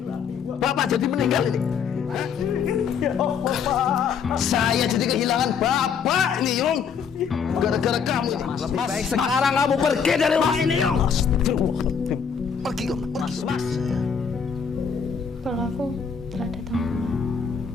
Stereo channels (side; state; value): right; quieter; 6.7 dB